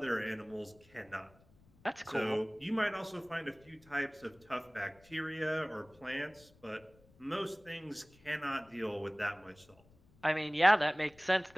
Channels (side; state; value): left; noise; rumble, 28 dB below the sound